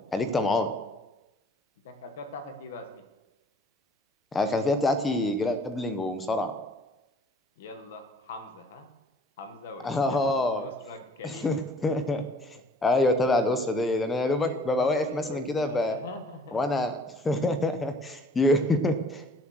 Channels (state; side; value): normal; both; correlation 0.55